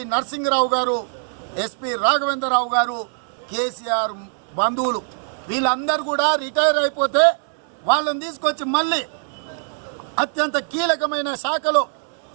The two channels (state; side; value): silent; left; 64 dB below the other